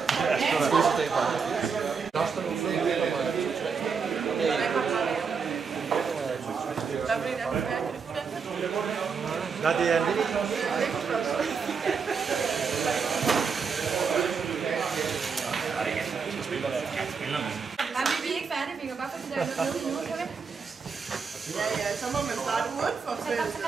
Nej, det er en lille. Ja, så må man starte udenfor feltet.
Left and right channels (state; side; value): quieter; left; 5.6 dB